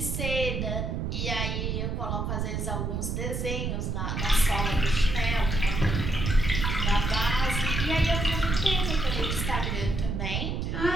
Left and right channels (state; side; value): noise; right; rumble, 1 dB below the sound